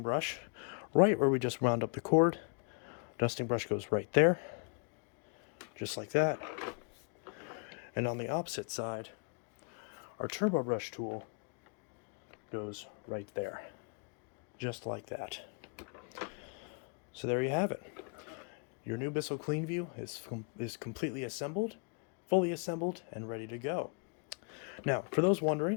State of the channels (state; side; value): quieter; right; 38.8 dB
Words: brush, right where we just wound up the cord, dusting brush goes right there, just like that. And on the opposite side, our turbo brush tool goes right there, just like that. So there you have it. Your new Bissell CleanView is completely assembled, fully assembled, and ready to go. Now, for those